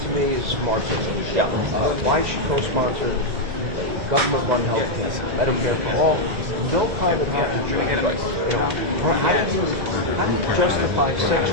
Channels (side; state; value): left; late; 2.0 ms